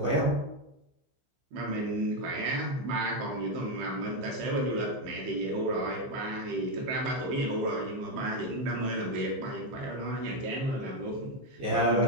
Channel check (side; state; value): left; late; 15 ms